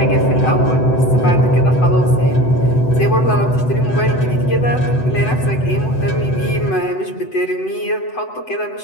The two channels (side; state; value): right; late; 7.9 ms